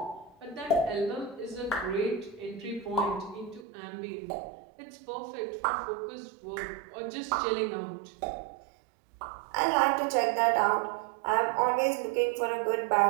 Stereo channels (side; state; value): left; drops out; at 3.7 s